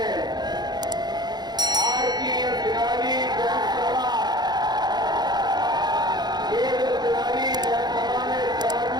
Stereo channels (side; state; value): left; late; 0.20 ms